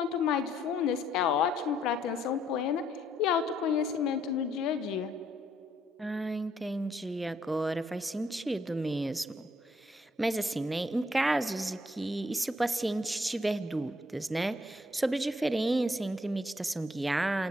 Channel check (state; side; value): normal; both; correlation 0.69